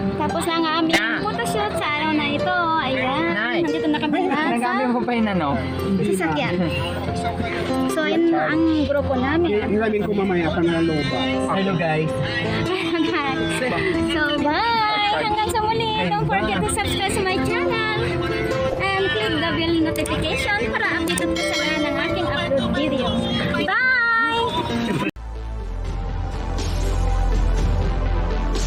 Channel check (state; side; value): identical; both; correlation 1.00